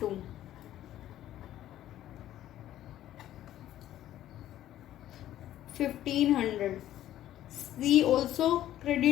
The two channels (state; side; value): quieter; right; 12.8 dB